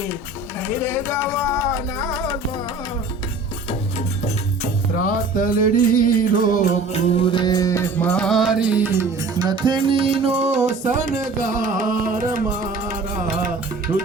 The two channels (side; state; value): left; quieter; 3.5 dB